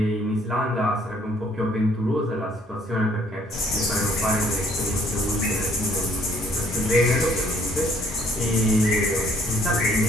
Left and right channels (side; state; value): both; normal; correlation 0.62